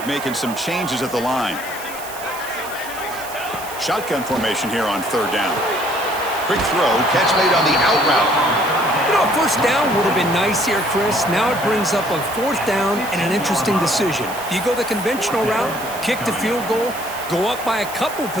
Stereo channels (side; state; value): right; noise; hiss, 13 dB below the sound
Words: making some changes at the line. Shotgun formation here on third down. Quick throw, catch made on the out route. You know, a first down would have been nice here, Chris. Now it brings up a 4th down and an interesting decision. Do you go the conventional route, kick the field goal, go up by a couple